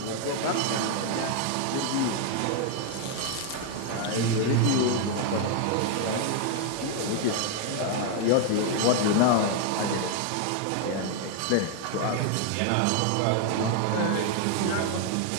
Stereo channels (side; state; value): both; different; correlation 0.00